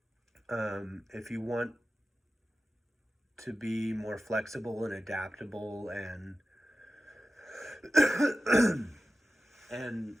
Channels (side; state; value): both; normal; correlation 0.94